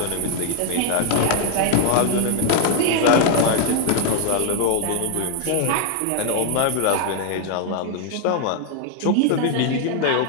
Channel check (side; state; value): both; different; correlation 0.00